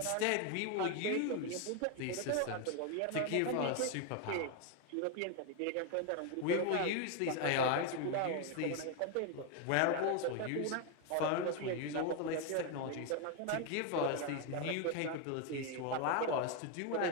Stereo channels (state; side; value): different; both; correlation 0.01